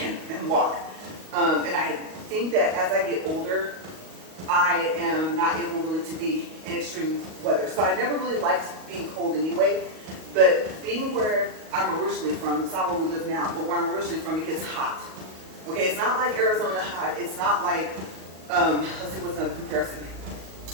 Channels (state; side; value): late; left; 38 ms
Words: walk. And I think that as I get older, I am not able really to be in extreme weather. So I never really liked being cold anyway, but being where I'm originally from, it's not where we live now, but where I'm originally from, it gets hot. Okay, it's not like Arizona hot. It's not like, let's see what's another comparison.